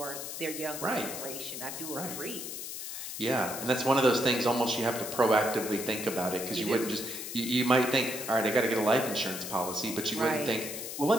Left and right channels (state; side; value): noise; left; hiss, 7 dB below the sound